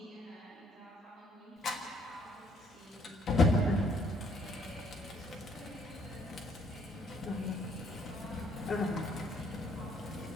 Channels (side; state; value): both; normal; correlation 0.65